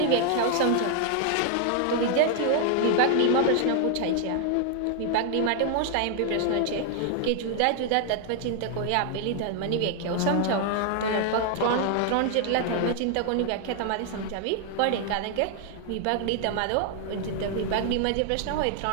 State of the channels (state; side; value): different; both; correlation 0.00